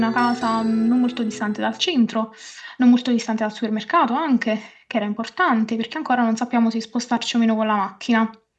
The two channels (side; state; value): both; identical; correlation 1.00